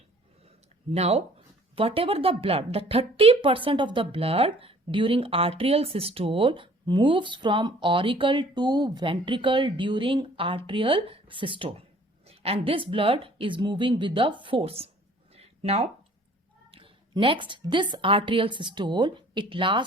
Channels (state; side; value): normal; both; correlation 0.53